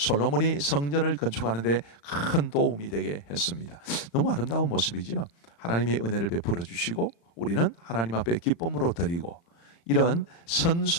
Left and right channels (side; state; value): right; late; 35 ms